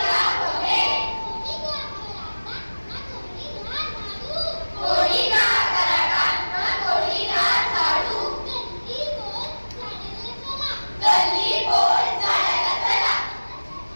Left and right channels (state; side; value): inverted; both; correlation -1.00